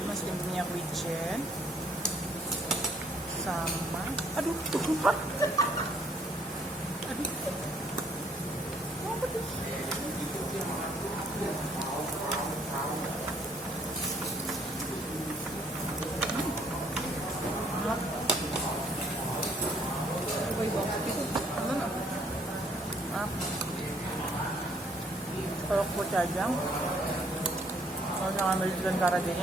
Masih punya wijen sama, aduh, lupa. Aduh, apa tuh? Kalau kocajang, kalau jangan ambil ikan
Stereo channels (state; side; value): normal; both; correlation 0.64